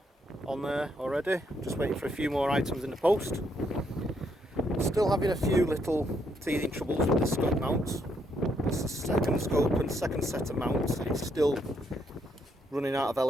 on there already. Just waiting for a few more items in the post. Still having a few little teething troubles with the scope mounts. It's the second scope and second set of mounts. It's still running out of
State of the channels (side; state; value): both; normal; correlation 0.74